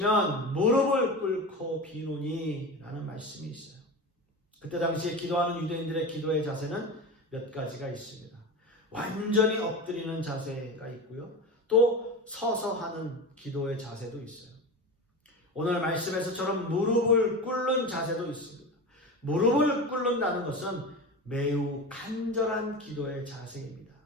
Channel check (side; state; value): both; normal; correlation 0.27